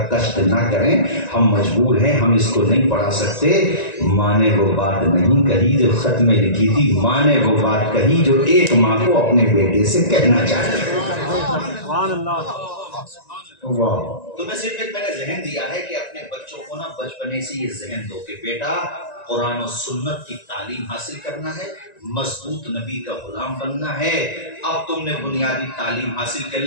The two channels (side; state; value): right; late; 1.9 ms